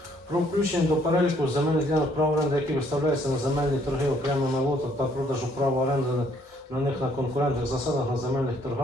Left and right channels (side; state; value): both; normal; correlation 0.66